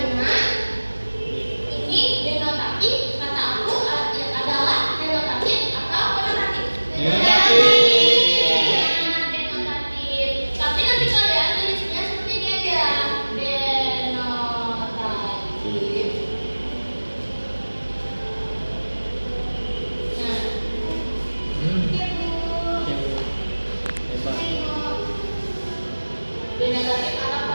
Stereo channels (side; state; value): both; inverted; correlation -1.00